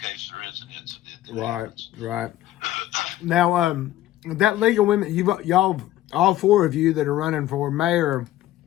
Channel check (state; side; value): quieter; right; 14.1 dB